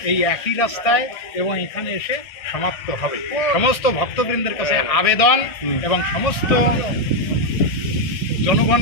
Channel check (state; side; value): late; right; 1.6 ms